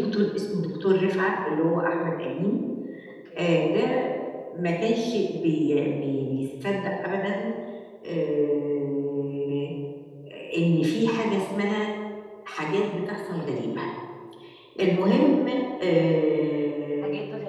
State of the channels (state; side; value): identical; both; correlation 1.00